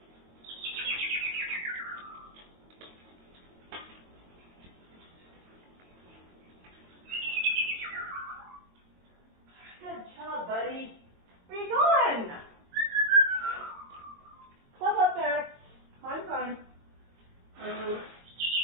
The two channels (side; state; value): left; late; 22 ms